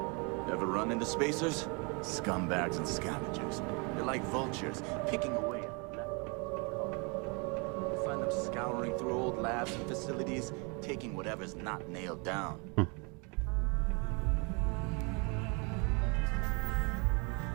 Ever run into spacers? Scumbags and scavengers. They're like vultures, picking away at leftovers. going through old labs and facilities, taking whatever's not nailed down.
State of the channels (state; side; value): quieter; left; 31.9 dB